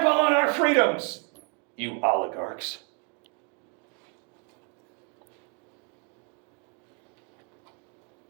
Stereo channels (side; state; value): left; quieter; 35.1 dB